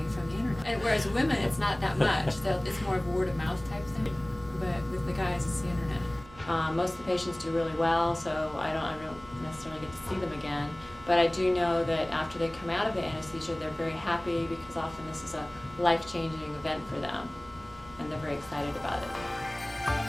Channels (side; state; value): right; noise; hum, 20 dB below the sound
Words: from the internet. And whereas women, it's not that much. It's more of a word of mouth type thing. But with the guys, it's the internet. Most of the patients do really well, so I don't necessarily get to see them again. But I do know that after they come out of the anesthesia, they're very happy because often this is a life-changing event for them, and they're very excited about it.